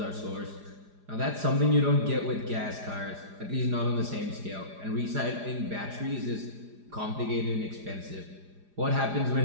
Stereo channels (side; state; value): left; late; 4.9 ms